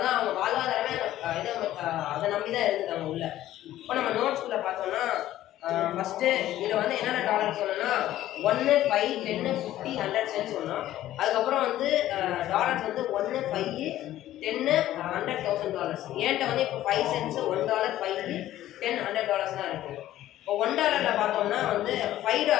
அவங்க வாழ்வாதாரமே அதை நம்பி தான் இருந்துட்டாங்க உள்ள. இப்போ நம்ம நோட்ஸ்குள்ளே பார்த்தோம்னா ஃபஸ்ட்டு இதில் வந்து என்னென்ன டாலர் சொன்னோன்னா 1, 5, 10, 50, 100 சென்ட் சொன்னோம். அதுக்கப்புறம் வந்து டாலர்ஸ் வந்து 1, 5, 10, $100,000. ஏன்ட்ட வந்து இப்போ 5 சென்ட்ஸு, $1, 5, 10, $100 தான் இருக்குது. இப்போ $1 பார்த்தோம்னா வந்து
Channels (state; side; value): quieter; right; 13.7 dB